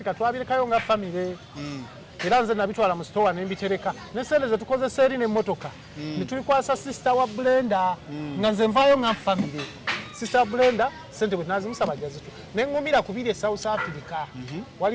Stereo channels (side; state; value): both; identical; correlation 1.00